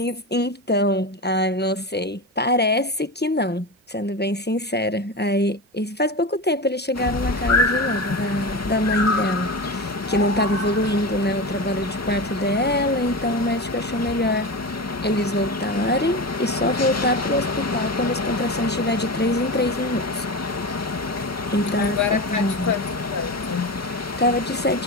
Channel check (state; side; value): normal; both; correlation 0.23